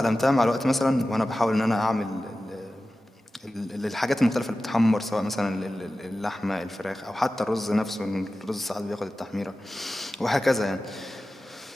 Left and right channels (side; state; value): both; normal; correlation 0.95